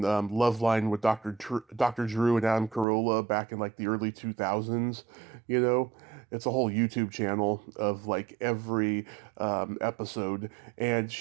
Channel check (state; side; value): drops out; left; at 2.9 s